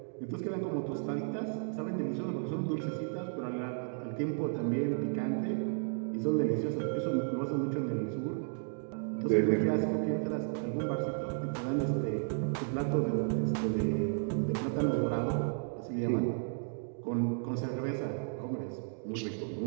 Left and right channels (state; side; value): silent; left; digital silence